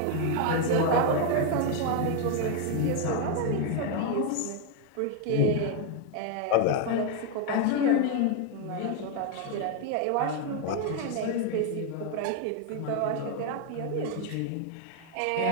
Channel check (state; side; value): different; both; correlation 0.01